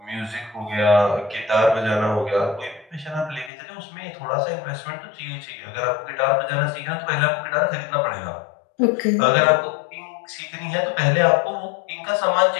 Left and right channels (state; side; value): drops out; right; at 3.5 s